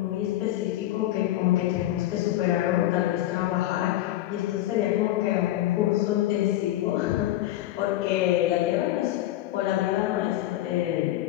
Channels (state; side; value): quieter; right; 14.7 dB